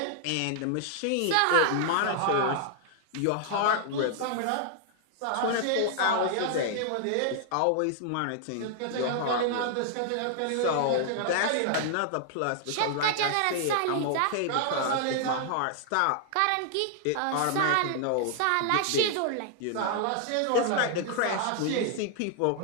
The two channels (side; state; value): both; different; correlation -0.01